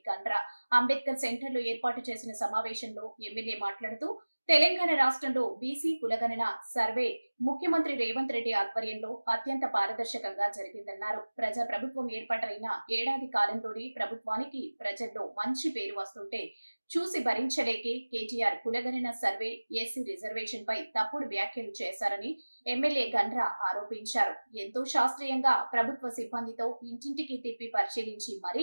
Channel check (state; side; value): inverted; both; correlation -1.00